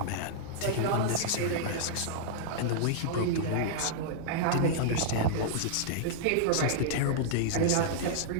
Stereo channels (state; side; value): different; both; correlation -0.02